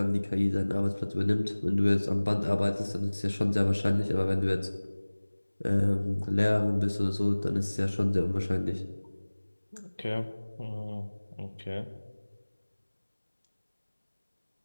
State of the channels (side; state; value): both; inverted; correlation -1.00